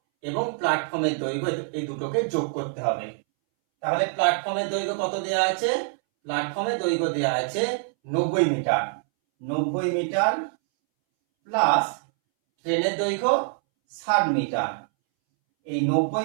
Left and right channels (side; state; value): left; silent; 62 dB below the other